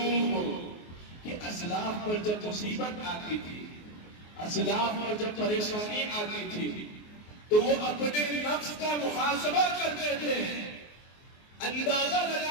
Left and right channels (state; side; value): late; right; 24 ms